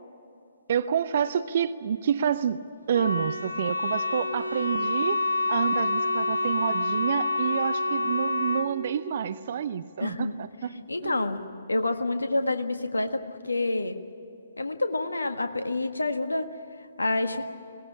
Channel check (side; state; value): both; inverted; correlation -0.80